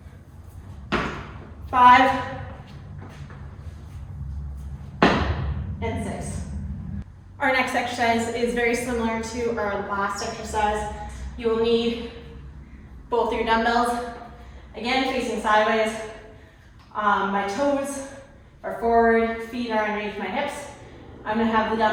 5, and 6. Our next exercise is very similar to our last exercise. You will need both your dumbbells, again facing sideways. My toes are forward, feet are underneath my hips. I'm going to have the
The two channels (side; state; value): both; identical; correlation 1.00